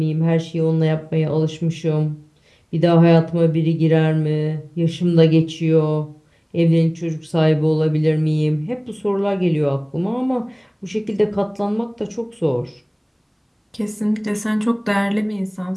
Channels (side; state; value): both; identical; correlation 1.00